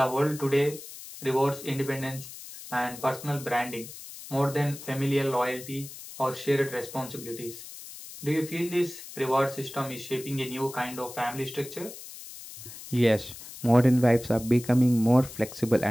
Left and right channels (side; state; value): left; noise; hiss, 14 dB below the sound